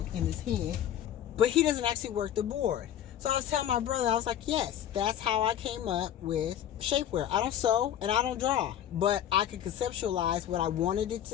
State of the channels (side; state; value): right; quieter; 10.7 dB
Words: in his head, but he doesn't actually work the board. So I was telling my brother, I was like, yes, that's how I came up with shapewear. I don't sew and I don't draw, but I could conceptualize what I wanted it